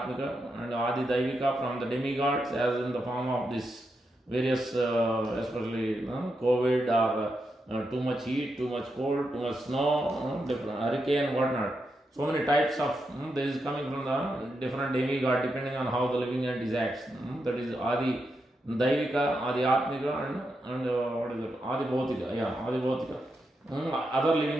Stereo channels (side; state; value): both; normal; correlation 0.85